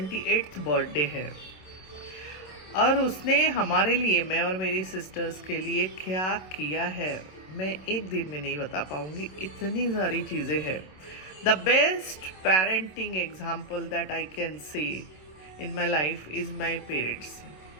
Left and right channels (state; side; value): late; right; 27 ms